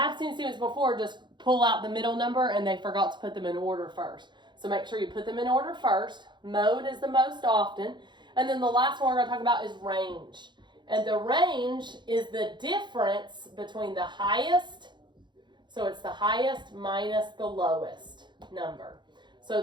seen students before just pull out the middle number and they forgot to put them in order first. So make sure you put them in order first. Mode is the most often. And then the last one we're going to talk about is range. And the range is the difference between the highest, so it's the highest minus the lowest number. So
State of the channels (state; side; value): late; left; 0.22 ms